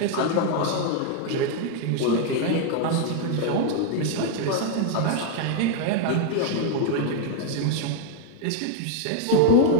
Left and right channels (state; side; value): different; both; correlation 0.00